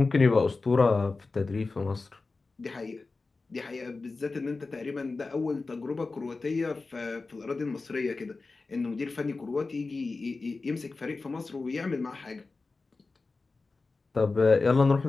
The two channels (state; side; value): quieter; right; 3.8 dB